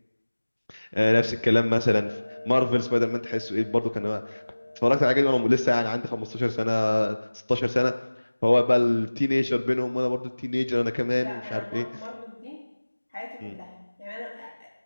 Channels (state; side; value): inverted; both; correlation -1.00